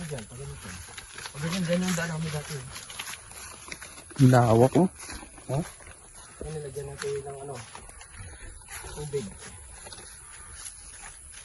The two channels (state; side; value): identical; both; correlation 1.00